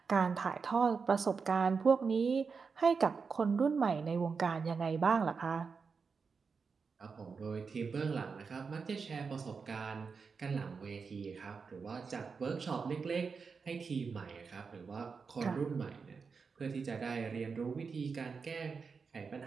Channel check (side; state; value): left; quieter; 5.2 dB